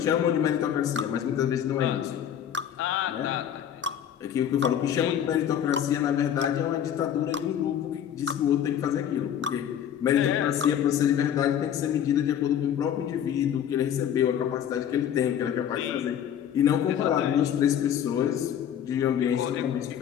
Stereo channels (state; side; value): quieter; right; 9.5 dB